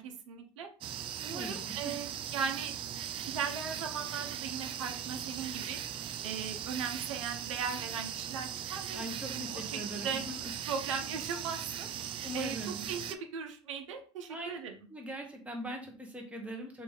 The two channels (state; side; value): quieter; left; 6.3 dB